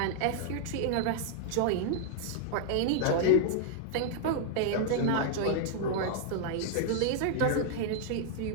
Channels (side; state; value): both; different; correlation -0.01